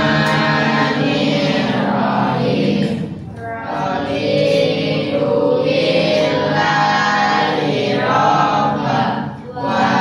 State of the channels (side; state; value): both; identical; correlation 1.00